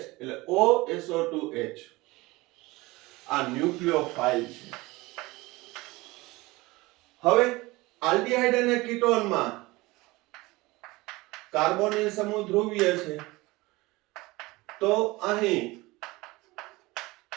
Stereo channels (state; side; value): quieter; left; 21.5 dB